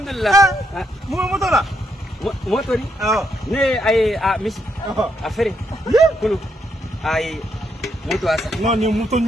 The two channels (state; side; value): normal; both; correlation 0.77